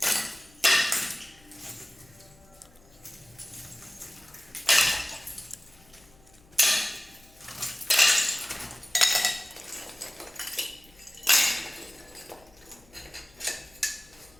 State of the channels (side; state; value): left; noise; hum, 27 dB below the sound